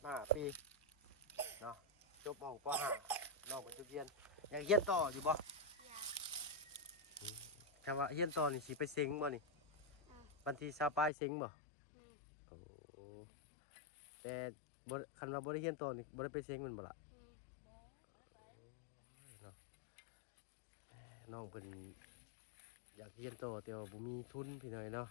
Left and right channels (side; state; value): right; drops out; at 11.1 s